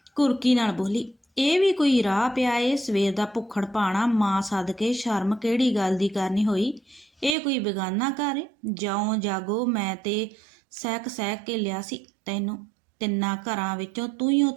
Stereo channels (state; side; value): drops out; left; at 7.4 s